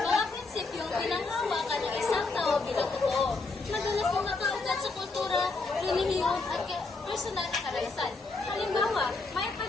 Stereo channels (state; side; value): quieter; right; 3.7 dB